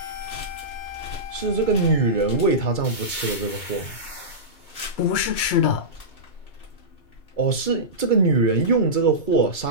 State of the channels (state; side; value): late; right; 2.3 ms